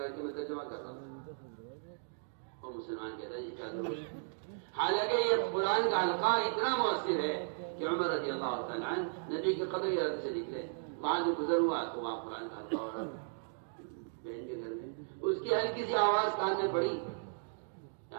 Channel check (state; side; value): silent; left; digital silence